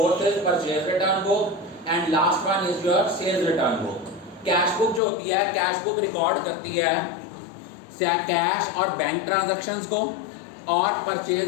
is purchase return book and last one is your sales return book. Cash book जो होती है, cash book record करती है cash और bank transactions को, और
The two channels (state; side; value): drops out; right; at 5.0 s